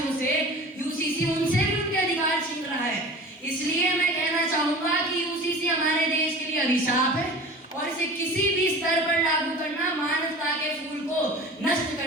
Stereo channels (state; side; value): normal; both; correlation 0.38